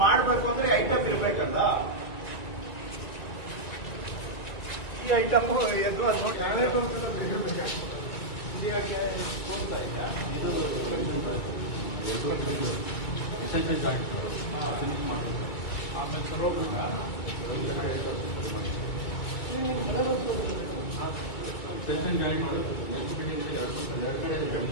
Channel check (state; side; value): late; right; 2.0 ms